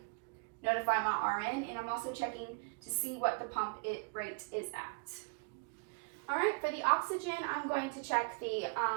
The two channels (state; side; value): quieter; left; 34.3 dB